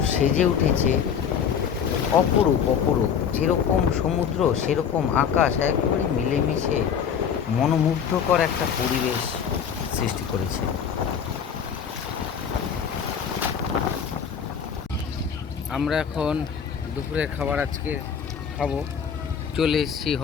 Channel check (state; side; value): quieter; right; 7.5 dB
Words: সেজে উঠেছে, অপরূপ অপরূপ। যেরকম সমুদ্র সেরকম আকাশ, একেবারে মিলেমিশে মনোমুগ্ধকর একটা পরিবেশ সৃষ্টি করেছে। আমরা এখন দুপুরের খাবার আজকে খাবো। চলে এসেছি